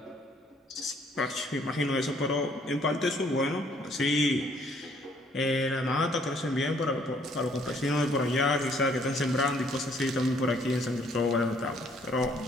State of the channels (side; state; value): both; normal; correlation 0.63